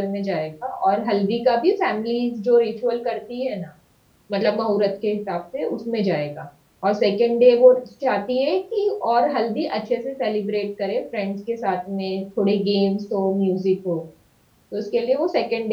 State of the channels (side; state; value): both; identical; correlation 1.00